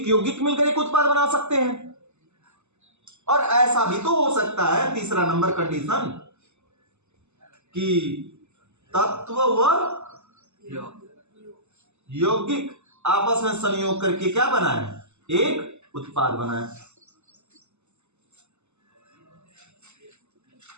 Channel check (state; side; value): late; left; 0.82 ms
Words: यौगिक मिलकर एक उत्पाद बना सकते हैं। और ऐसा भी तो हो सकता है, तीसरा नंबर कंडीशन, कि तत्व व यौगिक आपस में संयोग करके क्या बनाए? एक उत्पाद बनाए।